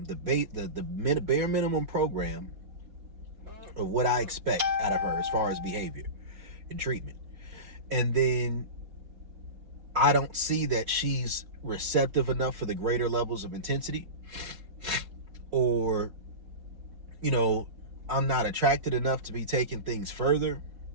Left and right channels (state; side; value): late; left; 4.6 ms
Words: the bare minimum program of what I expect out of her as far as behavior and treatment, and then I don't see that she's receptive enough for the greater levels of intensity, or, I'm not attracted enough to be taking things further,